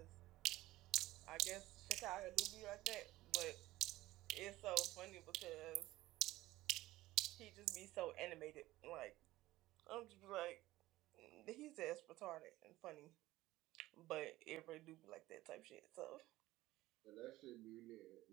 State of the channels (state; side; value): quieter; left; 17.1 dB